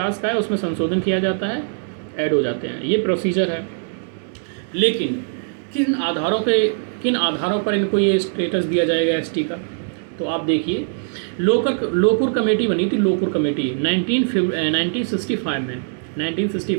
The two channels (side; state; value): left; silent; digital silence